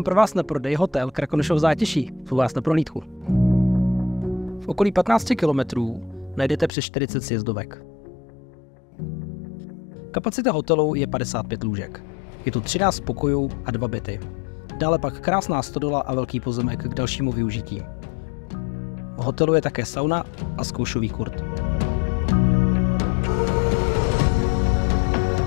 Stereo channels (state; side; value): drops out; right; at 6.7 s